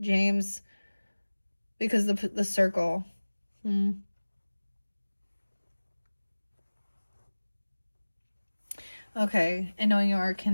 James, because the circle. Okay, and knowing you are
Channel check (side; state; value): both; inverted; correlation -1.00